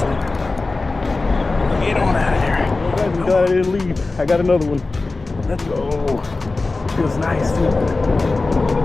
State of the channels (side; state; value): right; quieter; 3.5 dB